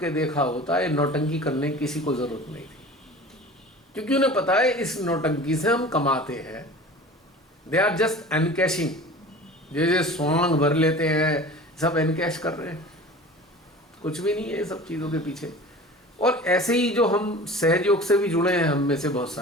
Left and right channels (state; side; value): normal; both; correlation 0.39